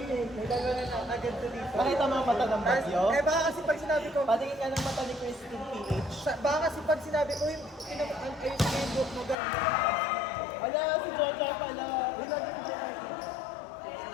dalawa na agad to dito. Nakita mo ang mata ng bagyo? Eh baka kasi pag sinabi ko, Patingin ka ng mata ni Christine PH. baka kasi pag sinabi ko yung Facebook mo gano'n. Ala, si Jojo pala.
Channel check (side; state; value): right; drops out; at 9.3 s